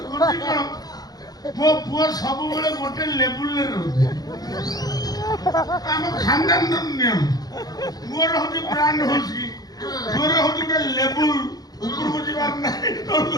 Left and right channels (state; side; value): late; right; 0.19 ms